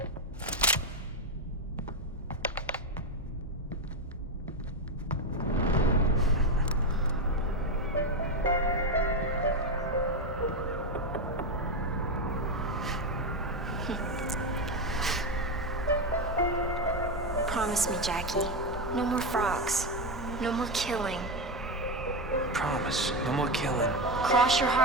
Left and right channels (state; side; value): normal; both; correlation 0.11